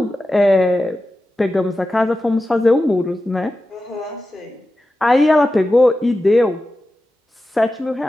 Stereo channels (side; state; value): both; normal; correlation 0.93